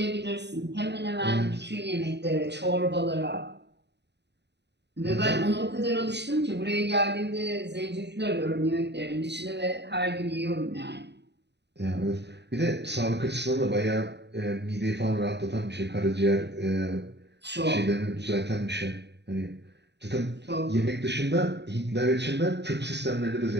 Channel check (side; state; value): left; late; 0.50 ms